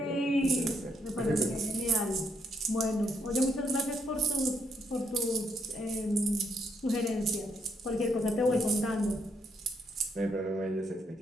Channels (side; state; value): both; normal; correlation 0.75